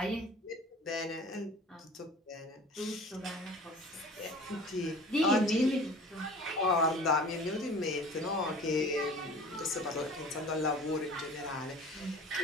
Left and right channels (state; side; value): normal; both; correlation 0.43